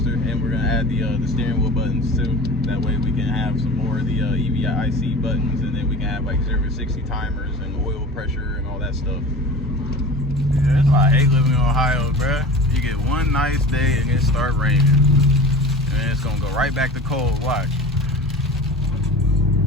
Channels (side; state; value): both; normal; correlation 0.37